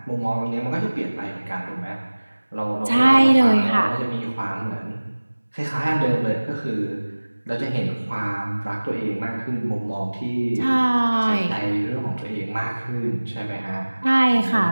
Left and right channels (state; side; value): inverted; both; correlation -1.00